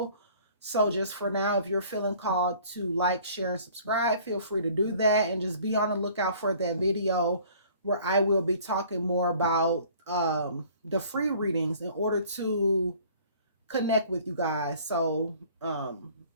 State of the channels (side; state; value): both; inverted; correlation -0.52